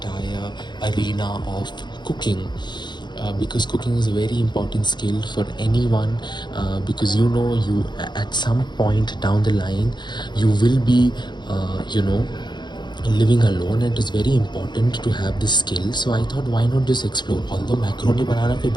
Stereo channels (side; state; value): right; late; 0.21 ms